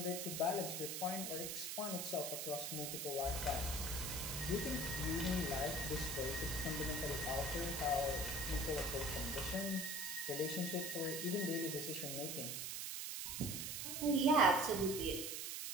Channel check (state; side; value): noise; right; hiss, 3 dB below the sound